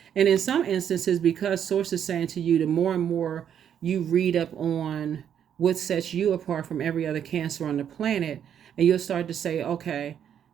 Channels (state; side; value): quieter; left; 9.0 dB